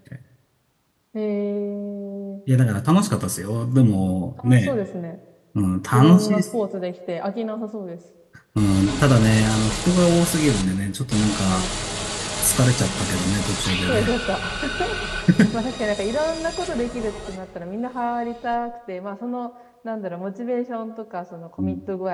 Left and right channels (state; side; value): identical; both; correlation 1.00